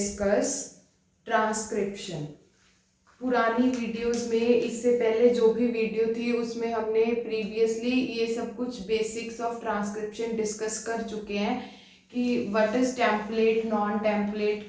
transcription. पुरानी videos में इससे पहले जो भी video थी उसमें हमने प्रीवियसली ये सब कुछ बेसिक्स ऑफ ट्रांसक्रिप्शन डिस्कस कर चुके हैं कि what is template, non template,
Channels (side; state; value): both; identical; correlation 1.00